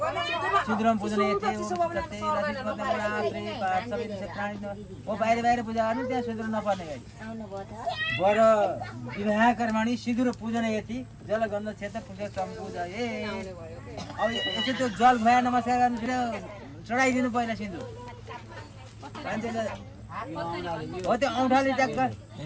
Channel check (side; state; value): both; identical; correlation 1.00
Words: सिन्दुरमा पूजन हो बाहिर बाहिर पूजा गर्नु त्यहाँ सिन्दुर नपर्ने गरी बर विवाह कर्मणि सिन्दुर पूजन यति जल गन्ध क्षेत्र पूजा सम्पूजा ए अब यसो त्यो जल भया नमस्कार गर्नु चढाइदिनु पहिला सिन्दुर मान्छेले हो त्यो औँठाले ट्याक्क